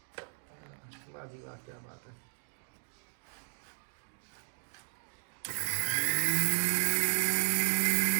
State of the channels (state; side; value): silent; left; digital silence